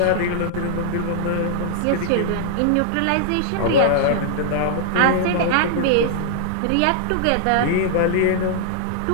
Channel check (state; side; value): different; both; correlation -0.01